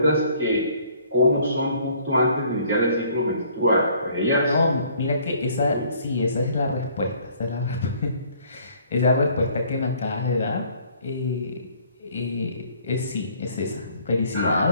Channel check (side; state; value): both; inverted; correlation -0.59